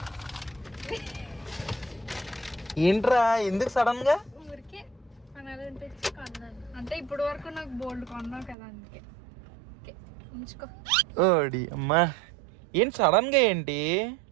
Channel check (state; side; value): drops out; left; at 8.6 s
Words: ఏంట్రా ఎందుకు సడన్ గా? ఊరికే కొనాలనిపించి కొన్నాను. అంటే ఇప్పుడు వరకు నాకు బోల్డ్ కొన్నావు కదా అందుకే. ఉంచుకో. ఓడి అమ్మా ఏంటి సడన్ గా? ఏంటి